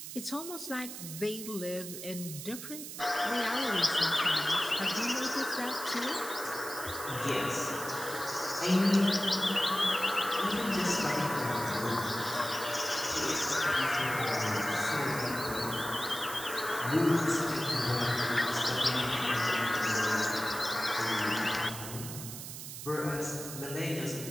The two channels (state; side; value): noise; right; hiss, 9 dB below the sound